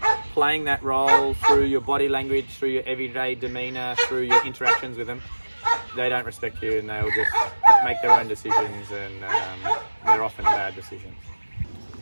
playing that role through your body language, through your everyday demeanour, through your interactions with them, they don't respect you, and they'll just make their own decisions, and they're often bad decisions.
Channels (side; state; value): both; inverted; correlation -1.00